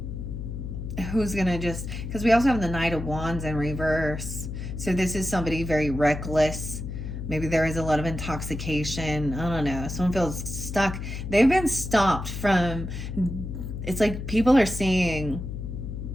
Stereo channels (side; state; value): left; noise; hum, 6 dB below the sound